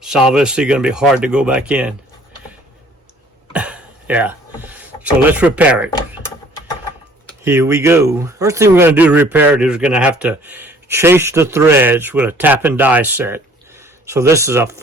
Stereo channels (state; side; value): normal; both; correlation 0.55